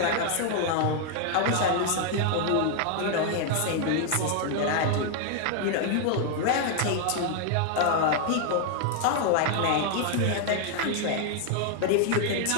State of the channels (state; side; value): different; both; correlation 0.00